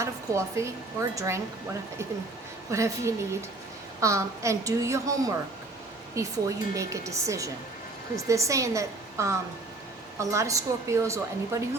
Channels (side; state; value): left; quieter; 3.1 dB